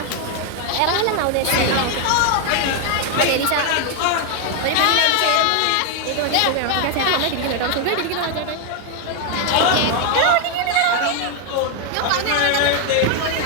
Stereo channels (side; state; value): both; different; correlation 0.01